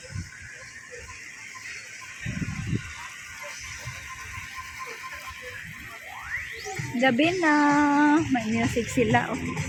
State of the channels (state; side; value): identical; both; correlation 1.00